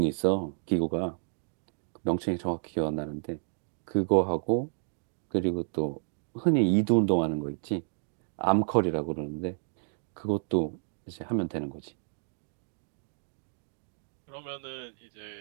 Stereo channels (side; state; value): left; silent; digital silence